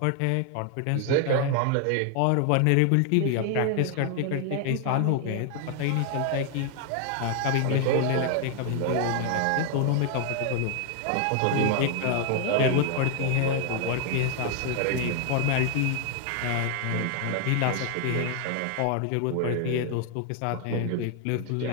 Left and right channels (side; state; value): both; different; correlation 0.00